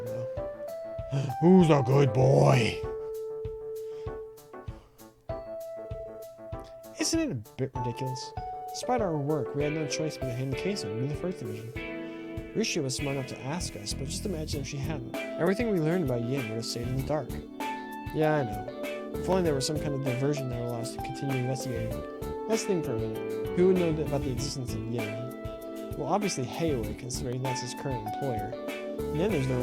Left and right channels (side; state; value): both; identical; correlation 1.00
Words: though. Who's a good boy? Isn't it a bit ridiculous? Despite our work, we had no choice but to hand the case over to the First Division. Risha was smart enough to ask us, but just imagine if she hadn't. Everything we learned about Yin would have stayed in the dark. Yeah, I know. If only there was some kind of diversion that would allow us to continue investigating. Let's think for a minute. Who would know about the existence of Yin? Well, obviously Heiwei, considering that's his current employer. And then there's their